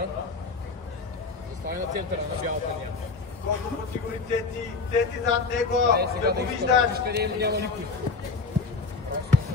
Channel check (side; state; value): right; quieter; 4.2 dB